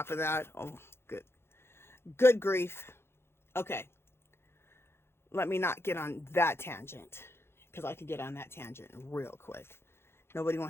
of that. Oh, good grief. Okay. Let me not get on that tangent, because I could get on that tangent real quick. Nobody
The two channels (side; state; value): right; late; 0.12 ms